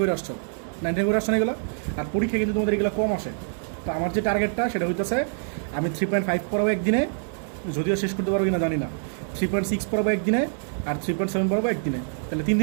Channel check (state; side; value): silent; left; digital silence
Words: করে আসছো, 99 করে আসছো না এগুলো। আর পরীক্ষা কিন্তু তোমাদের এগুলো কম আসে। তো আমার যে টার্গেটটা সেটা হইতেছে আমি 3.5 পড়াবো একদিনে, যদিও শেষ করতে পারবো কিনা জানি না। 3.6 পড়াবো একদিনে, আর 3.7 পড়াবো একদিনে। তাহলে 3